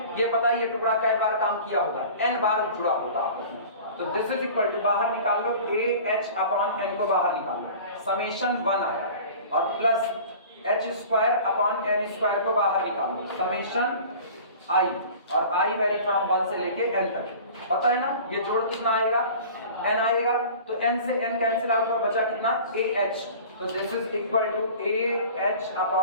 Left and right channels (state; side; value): inverted; both; correlation -0.42